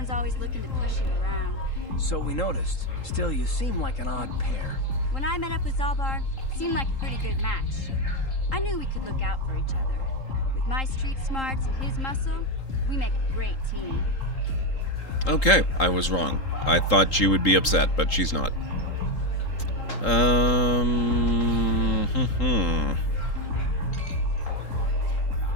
always looking to push you around. So we noticed. Still, you seem like an odd pair. When I met up with Zalbar, it seemed like a pretty good match. I knew we could look out for each other. With my street smarts and his muscle, we make a great team. Okay, I was wrong. I thought she would be upset, but she's not.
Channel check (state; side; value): late; right; 3.8 ms